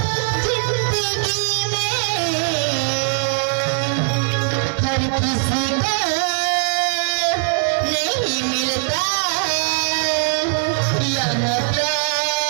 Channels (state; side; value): silent; left; 63 dB below the other